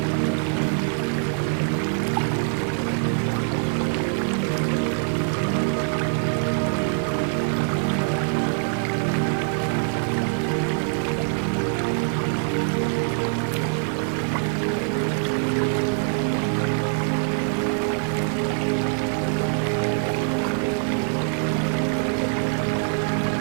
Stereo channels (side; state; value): left; silent; 57 dB below the other